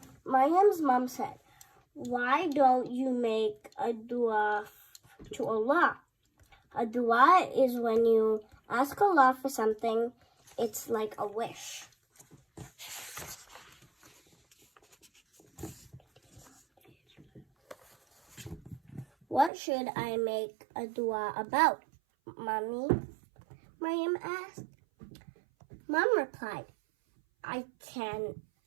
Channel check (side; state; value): left; drops out; at 19.5 s